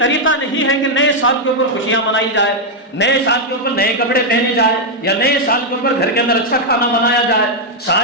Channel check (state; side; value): normal; both; correlation -0.01